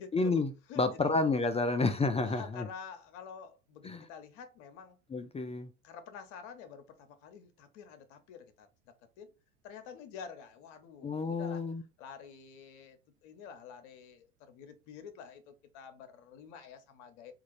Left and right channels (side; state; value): right; quieter; 3.1 dB